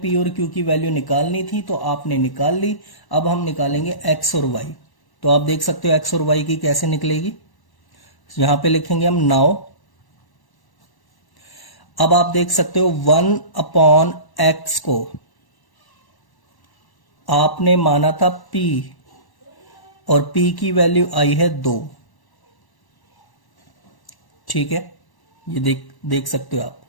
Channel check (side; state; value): right; late; 1.1 ms